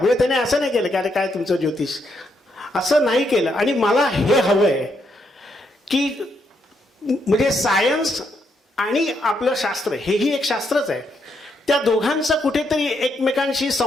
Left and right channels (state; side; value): normal; both; correlation 0.77